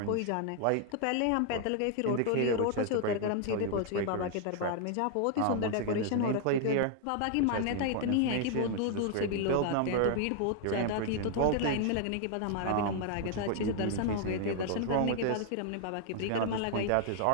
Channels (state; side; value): different; both; correlation 0.00